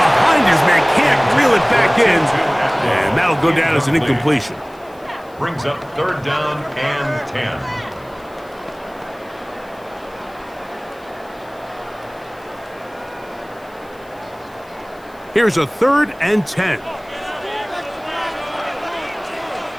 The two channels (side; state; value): left; noise; hiss, 29 dB below the sound